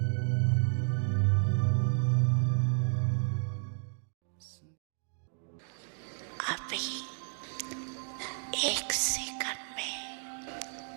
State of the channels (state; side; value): silent; left; 56 dB below the other